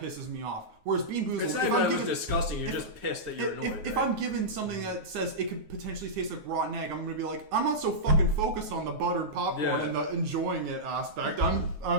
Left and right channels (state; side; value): late; left; 9.5 ms